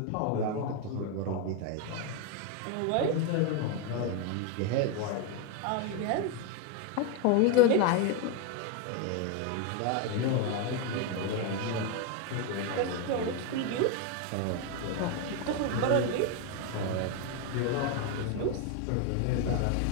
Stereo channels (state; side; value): different; both; correlation 0.01